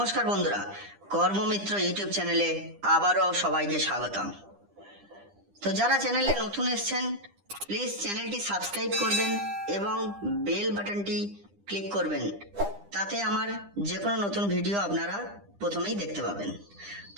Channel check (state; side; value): late; left; 9.9 ms